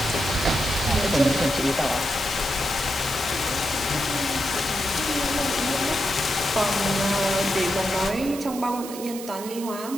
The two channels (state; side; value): noise; right; hiss, 12 dB below the sound